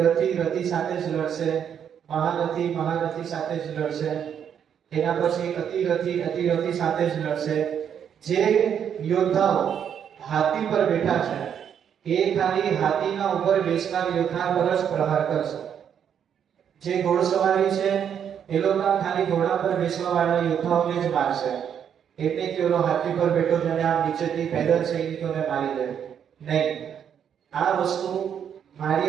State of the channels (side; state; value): left; quieter; 8.4 dB